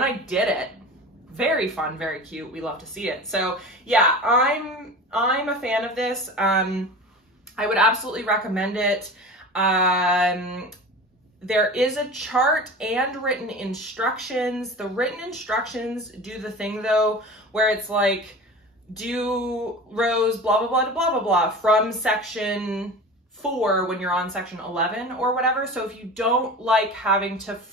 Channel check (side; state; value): both; normal; correlation 0.34